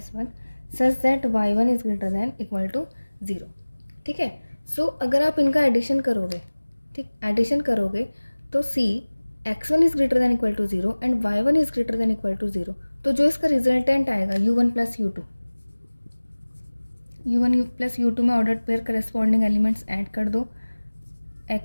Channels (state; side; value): inverted; both; correlation -1.00